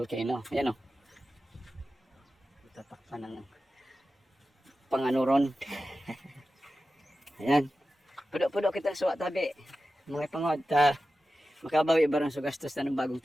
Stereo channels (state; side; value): normal; both; correlation 0.93